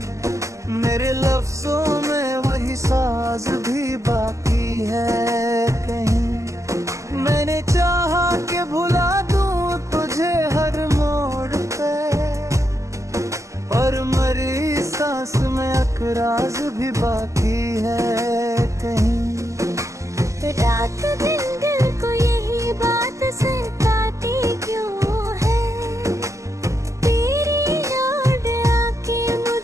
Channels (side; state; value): left; late; 0.15 ms